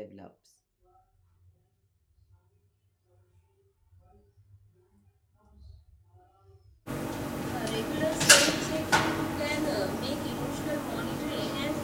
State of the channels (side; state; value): both; identical; correlation 1.00